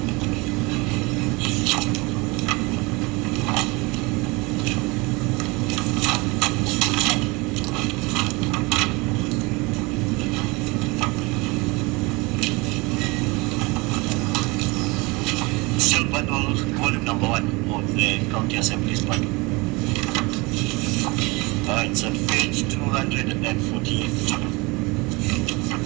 Still bundle, volume number 1 of the County Assembly's bundle. It's on page 248.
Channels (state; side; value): quieter; left; 25.6 dB